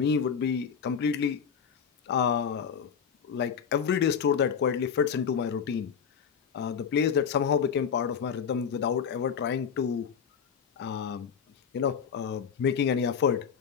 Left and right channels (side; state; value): right; quieter; 7.0 dB